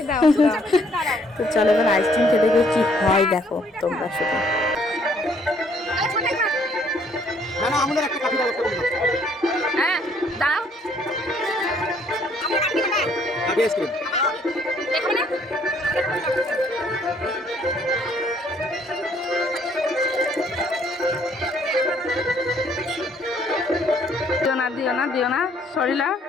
তো চলো এবার আইসক্রিম খেতে গিয়ে কি হয় দেখো তোমরা শুধু। হ্যাঁ দাও দিও না দিও না সরিলা।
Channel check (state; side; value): normal; both; correlation 0.64